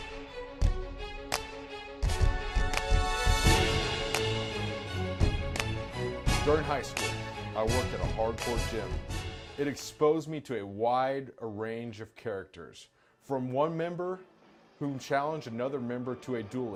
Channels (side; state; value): both; identical; correlation 1.00